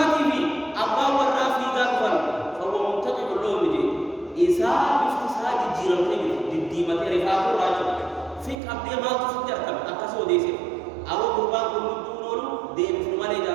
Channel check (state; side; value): drops out; left; at 8.6 s